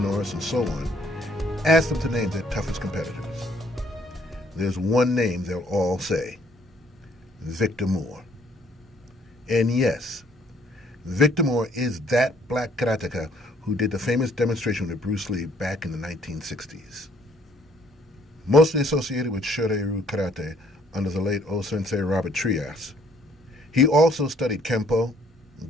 and so on, ask them to name their toughest competitors. There's one name they'll all say: Victor Moore. And yes, Victor Moore is that black karateka who did the famous demonstration with Bruce Lee back in the 1960s. Mostly associated with Shorin-ryu karate under the late O-sensei Robert Trias, he also studied Kempo,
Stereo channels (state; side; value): normal; both; correlation 0.63